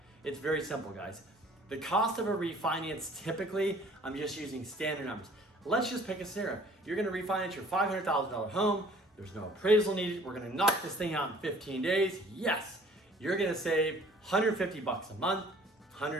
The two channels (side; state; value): both; normal; correlation 0.53